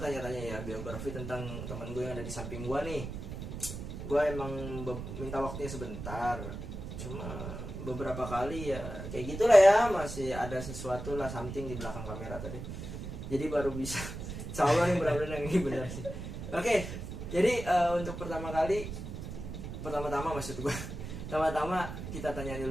ya biografi tentang teman gue yang ada di samping gua nih. Gua emang minta waktunya sebentar, cuma beberapa kali ya kayak gitulah ya, masih ada sesuatu lah something di belakang kamera tadi, jadi baru bisa insya Allah nih benar-benar yang ini benar sih. Oke, jadi untuk pertama-tama maksud gue pertama-tama kita tanya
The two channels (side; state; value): right; noise; rumble, 8 dB below the sound